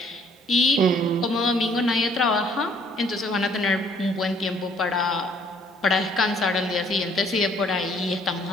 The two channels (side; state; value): both; normal; correlation 0.61